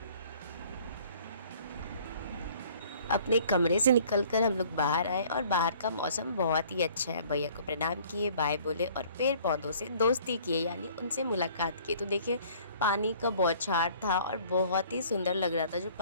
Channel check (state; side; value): inverted; both; correlation -0.54